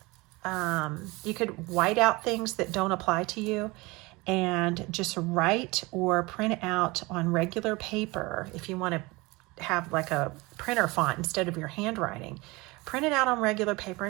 you could white out things that don't apply to you and just write or print out on regular paper. If you want to have like a printer font instead of your handwriting, print it out on regular paper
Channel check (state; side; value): quieter; left; 23.6 dB